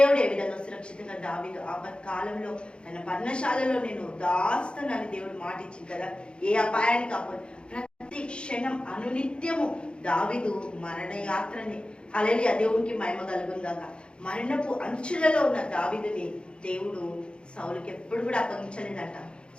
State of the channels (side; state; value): right; late; 0.054 ms